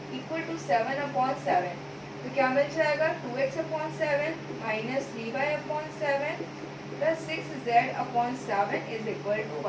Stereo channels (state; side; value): identical; both; correlation 1.00